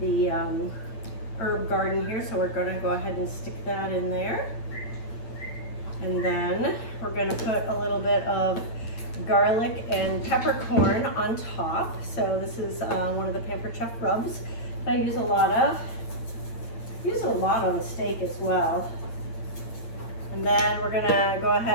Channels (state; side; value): late; right; 8.8 ms